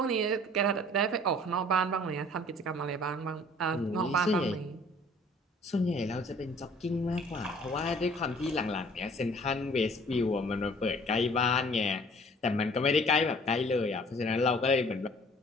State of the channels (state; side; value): normal; both; correlation 0.53